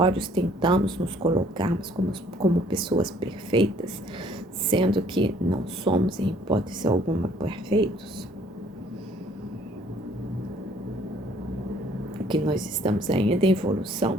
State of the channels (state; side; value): normal; both; correlation 0.59